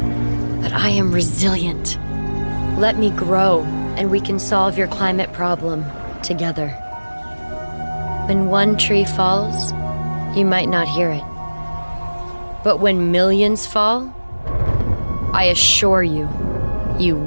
But I am resilient. Let me grow, and we can solve your climate problem together. When one tree falls, you might not hear it. But when millions fall, I assure you, you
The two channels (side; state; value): both; inverted; correlation -1.00